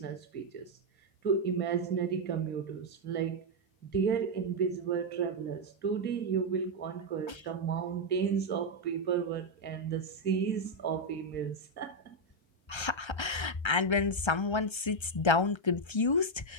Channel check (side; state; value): right; late; 1.3 ms